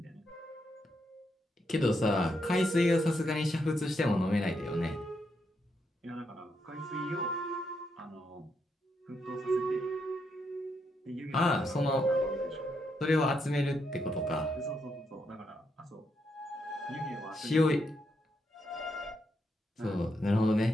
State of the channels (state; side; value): normal; both; correlation 0.80